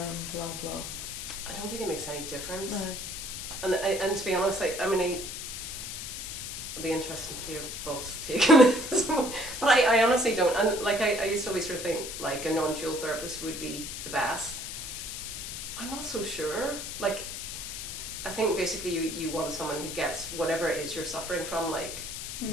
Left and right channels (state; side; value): noise; left; hiss, 7 dB below the sound